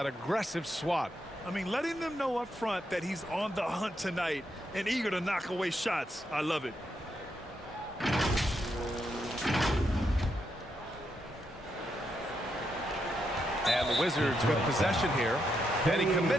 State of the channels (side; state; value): both; normal; correlation 0.81